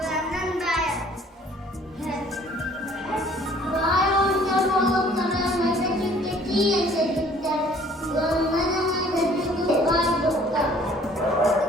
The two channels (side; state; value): both; normal; correlation 0.55